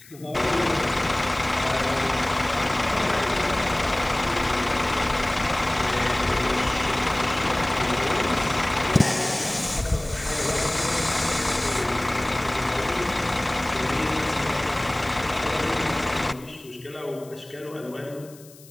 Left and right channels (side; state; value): left; noise; hiss, 22 dB below the sound